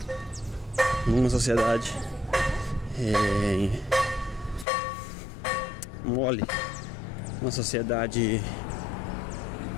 numa sociedade mole, uma sociedade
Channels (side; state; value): right; drops out; at 4.7 s